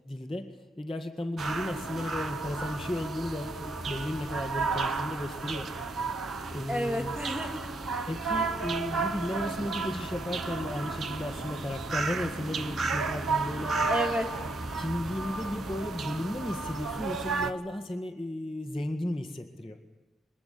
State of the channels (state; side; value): normal; both; correlation 0.76